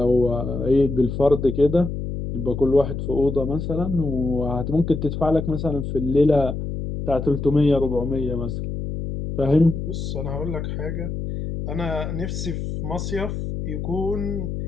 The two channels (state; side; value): noise; left; hum, 5 dB below the sound